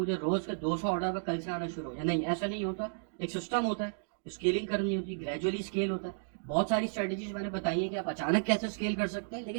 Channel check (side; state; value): left; silent; digital silence